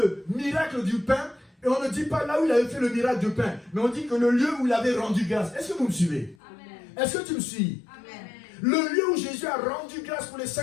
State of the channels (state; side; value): drops out; right; at 6.4 s